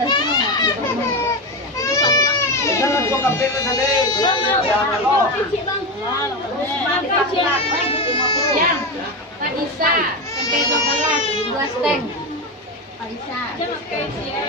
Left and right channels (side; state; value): both; normal; correlation 0.16